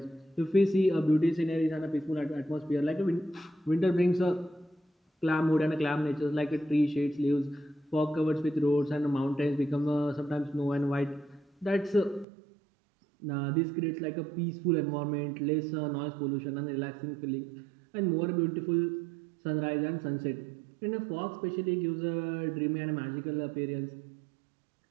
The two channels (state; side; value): drops out; left; at 12.2 s